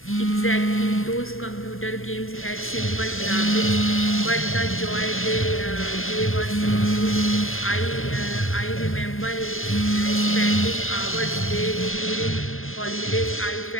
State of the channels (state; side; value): late; right; 0.60 ms